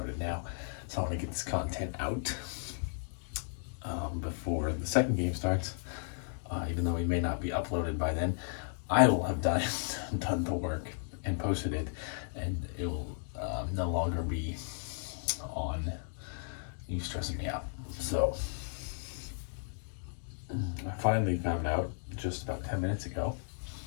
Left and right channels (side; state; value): right; silent; digital silence